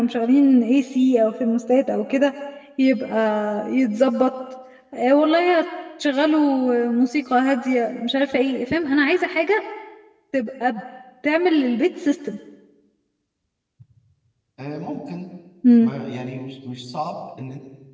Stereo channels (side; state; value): both; identical; correlation 1.00